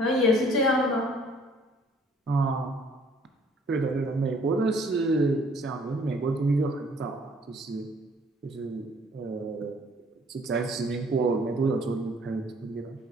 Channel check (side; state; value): both; normal; correlation 0.59